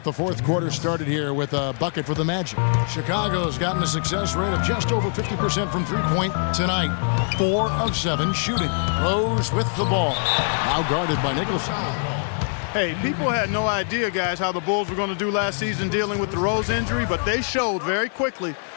the fourth quarter started here with a bucket for the Magic. Chicago's gotten a success rate of just over 50% from three-point tonight. 4 of 7 shooting. Rose with the ball. Now guarded by Nicholson. Hey, people had no idea, guys, how the Bulls were going to do last season dealing with the Rose injury, but they showed very quickly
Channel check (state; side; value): silent; right; 59 dB below the other